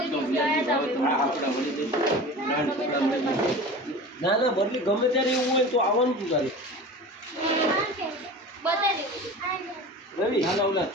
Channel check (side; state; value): both; normal; correlation 0.35